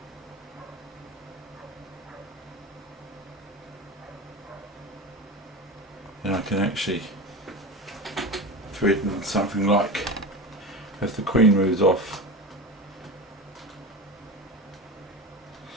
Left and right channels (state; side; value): normal; both; correlation 0.27